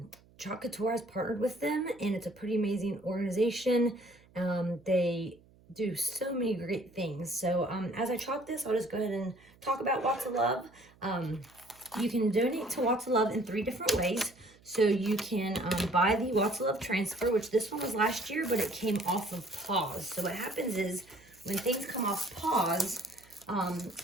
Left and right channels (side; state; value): right; noise; hum, 28 dB below the sound